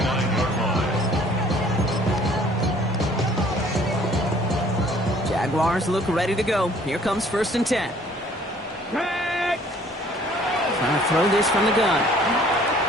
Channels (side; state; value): both; normal; correlation 0.56